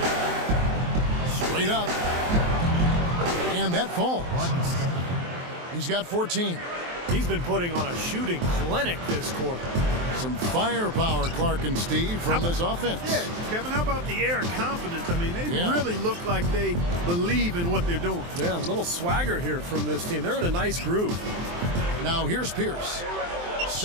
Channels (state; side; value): late; left; 23 ms